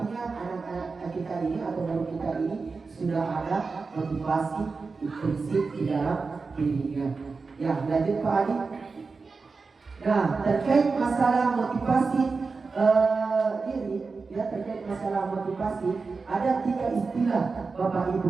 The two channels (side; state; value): left; quieter; 4.4 dB